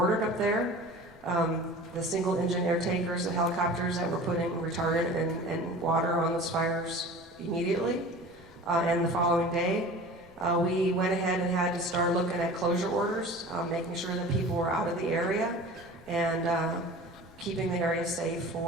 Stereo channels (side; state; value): left; noise; rumble, 25 dB below the sound